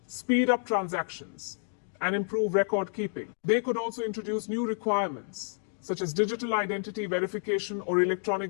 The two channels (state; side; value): silent; right; digital silence